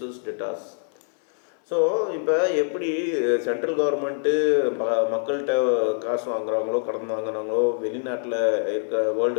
debtors. So இப்போ எப்படி central government மக்கள்கிட்ட காசு வாங்குறாங்களோ, கடன் வாங்குறாங்களோ, வெளிநாட்டில் இருக்க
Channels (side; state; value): right; silent; 60 dB below the other